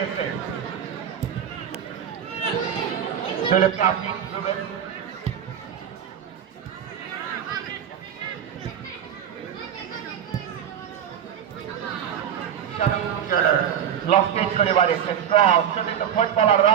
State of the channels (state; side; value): quieter; left; 9.1 dB